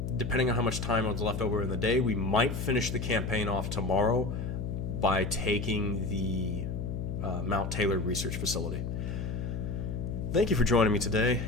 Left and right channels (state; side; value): noise; left; hum, 4 dB below the sound